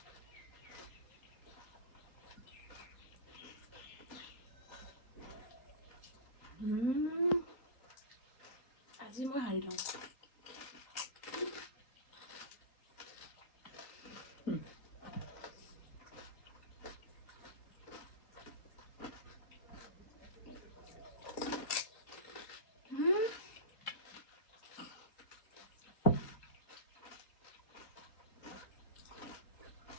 আজি মই হাৰি লওঁ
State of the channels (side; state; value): right; late; 3.8 ms